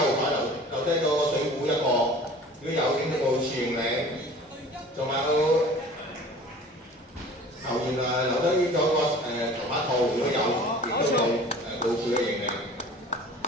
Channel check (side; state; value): both; normal; correlation 0.44